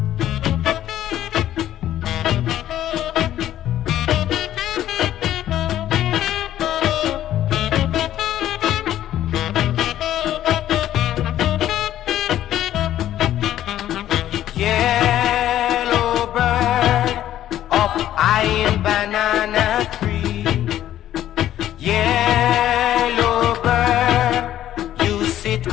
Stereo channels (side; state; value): right; quieter; 12.3 dB